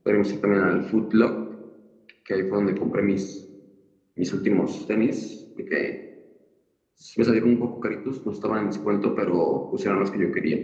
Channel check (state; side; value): identical; both; correlation 1.00